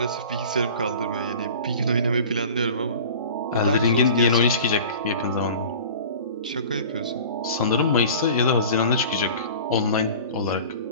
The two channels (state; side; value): inverted; both; correlation -0.40